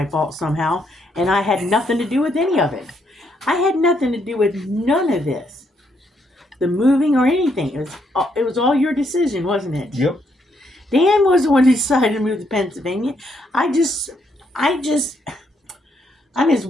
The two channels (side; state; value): both; normal; correlation 0.74